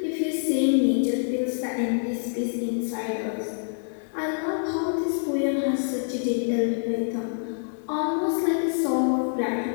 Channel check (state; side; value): silent; right; digital silence